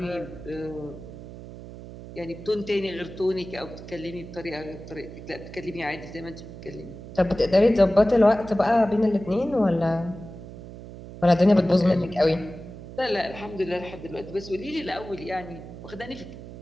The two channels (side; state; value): right; noise; hum, 14 dB below the sound